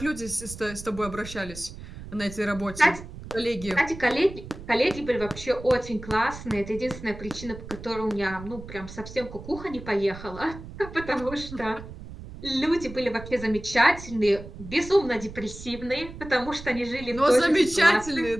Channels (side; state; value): right; noise; rumble, 13 dB below the sound